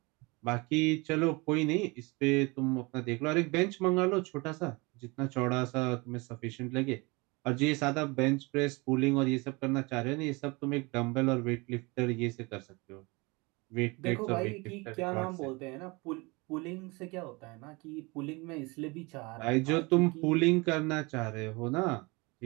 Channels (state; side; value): quieter; left; 26.1 dB